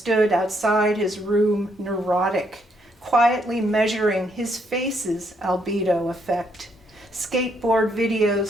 outside his room, neurotic, quietly measuring his face's albedo effect, skateboard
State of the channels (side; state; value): both; normal; correlation 0.73